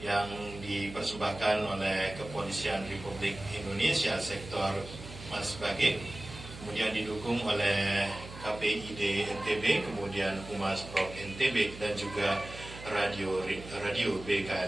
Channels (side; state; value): right; noise; hum, 14 dB below the sound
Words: dipersembahkan oleh Kepolisian Republik Indonesia Sektor Mas Bage, kemudian didukung oleh KPID NTB, kemudian Humas Prov NTB dan juga Radio